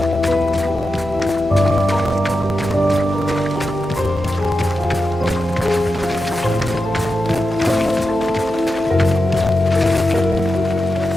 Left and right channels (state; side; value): normal; both; correlation 0.89